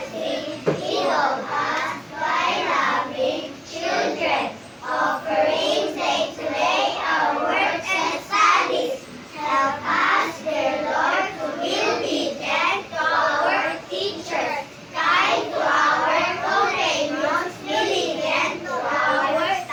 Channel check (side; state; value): both; identical; correlation 1.00